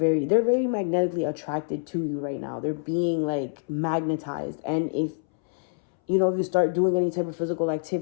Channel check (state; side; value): silent; right; 61 dB below the other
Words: very magnetically attracted to you right now. They're being like magnetized. And if, you know, if you start doing any type of physical